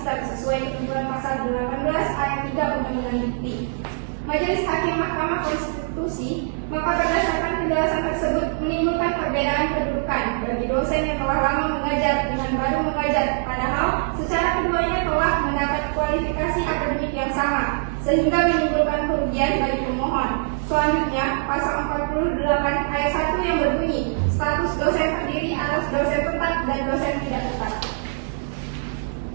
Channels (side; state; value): left; silent; digital silence